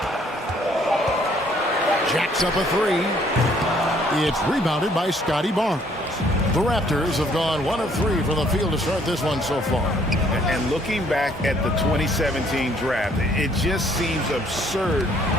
Jacks up a 3. It's rebounded by Scotty Barnes. The Raptors have gone 1 of 3 from the field to start this one so far. And looking back at the 2017 draft, it just seems absurd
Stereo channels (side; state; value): both; normal; correlation 0.63